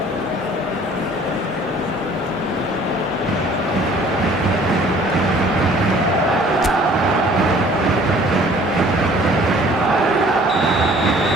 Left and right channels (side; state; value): both; normal; correlation 0.53